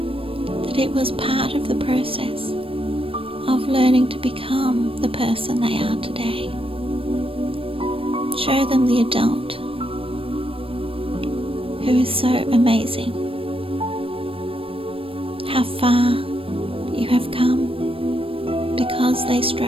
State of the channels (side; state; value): left; late; 0.27 ms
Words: that it was part of the process of learning to become the person they are today. Show them the adult who is so amazing, how far you have come because they